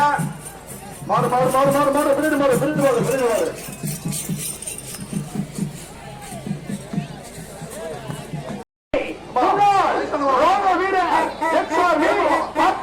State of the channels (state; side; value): identical; both; correlation 1.00